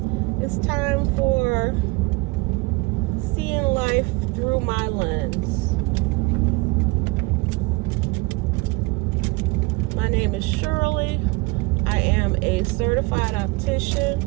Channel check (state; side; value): quieter; left; 25.7 dB